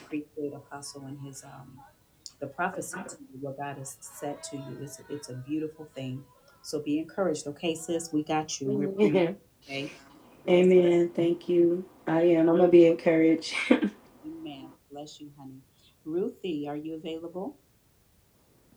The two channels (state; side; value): identical; both; correlation 1.00